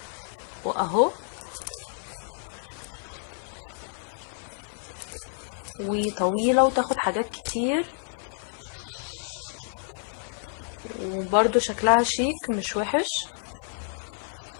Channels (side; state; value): right; silent; digital silence